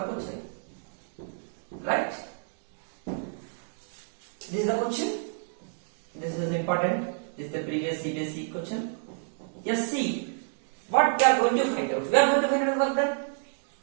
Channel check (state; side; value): silent; left; digital silence